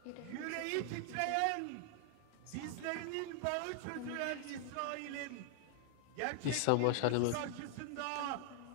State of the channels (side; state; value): both; different; correlation 0.00